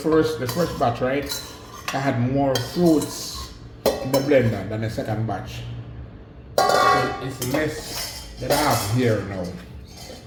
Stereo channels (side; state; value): both; identical; correlation 1.00